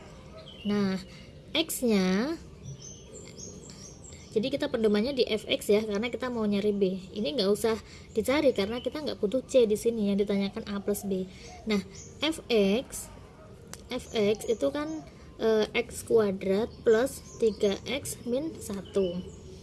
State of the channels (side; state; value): both; identical; correlation 1.00